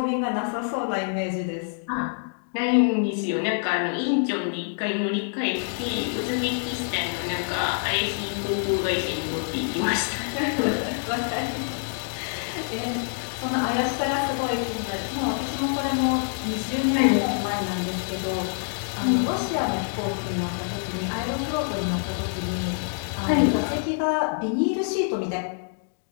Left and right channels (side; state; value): right; silent; 61 dB below the other